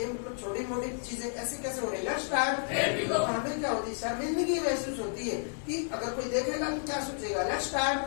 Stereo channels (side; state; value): right; silent; 57 dB below the other